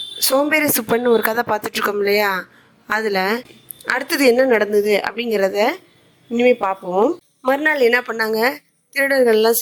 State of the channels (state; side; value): identical; both; correlation 1.00